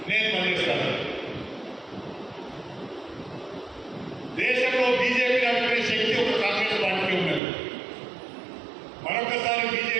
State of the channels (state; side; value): drops out; left; at 7.4 s